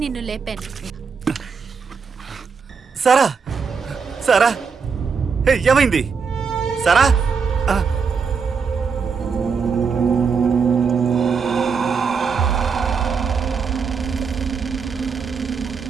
నిన్ను లేపాను. సారా సారా ఏమైంది సారా?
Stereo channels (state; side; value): quieter; left; 5.7 dB